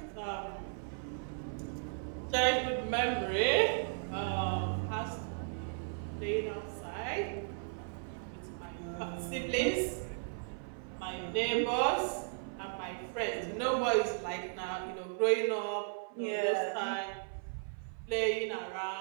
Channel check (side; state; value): left; silent; 54 dB below the other